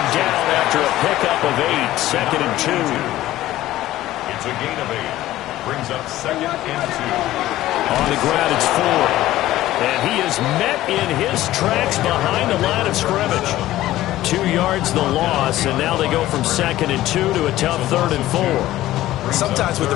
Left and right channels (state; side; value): quieter; right; 15.1 dB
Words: down after a pickup of 8, 2nd and 2. It's a gain of 8. Brings up 2nd and 2. On the ground, it's 4. And he is met in his tracks behind the line of scrimmage. 2 yards the loss, and now they go from 2nd and 2 to a tough 3rd and 4. Sometimes with